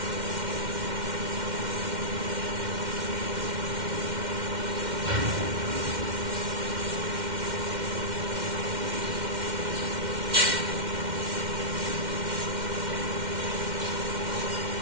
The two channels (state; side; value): late; left; 2.1 ms